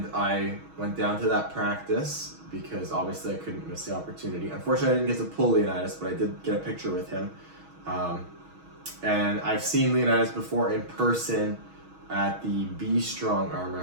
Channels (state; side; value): late; left; 6.3 ms